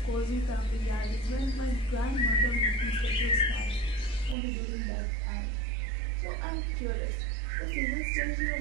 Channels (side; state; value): left; drops out; at 4.4 s